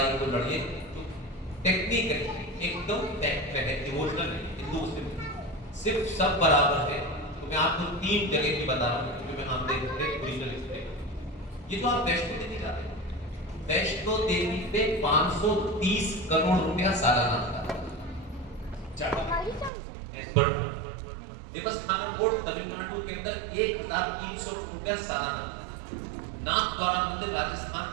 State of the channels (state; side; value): drops out; left; at 19.7 s